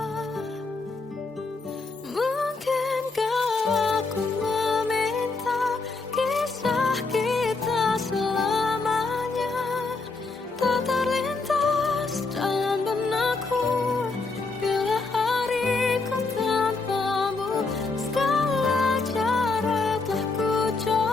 Mungkinkah aku meminta kisah kita selamanya tak terlintas dalam benakku bila hariku tanpamu. Segala cara telah ku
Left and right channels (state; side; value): quieter; right; 3.8 dB